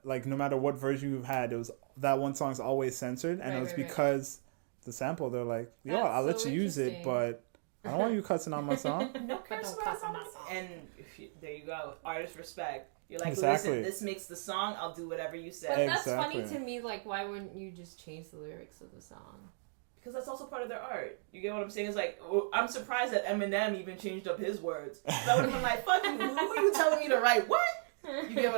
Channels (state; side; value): silent; left; digital silence